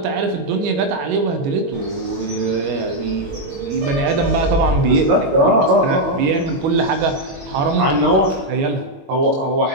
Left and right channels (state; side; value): late; left; 21 ms